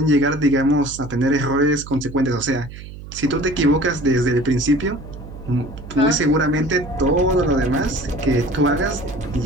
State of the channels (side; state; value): right; noise; hum, 14 dB below the sound